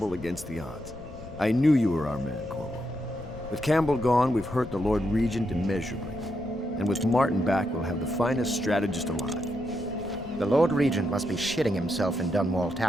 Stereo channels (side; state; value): left; noise; rumble, 16 dB below the sound